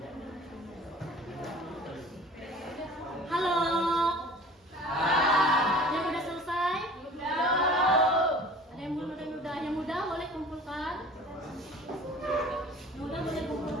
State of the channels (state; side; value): normal; both; correlation 0.45